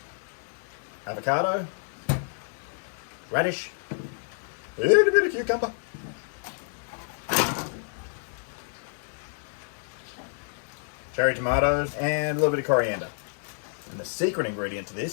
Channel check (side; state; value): right; silent; digital silence